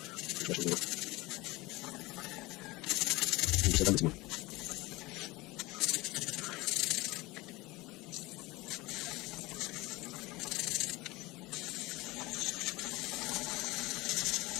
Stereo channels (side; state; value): right; quieter; 21.8 dB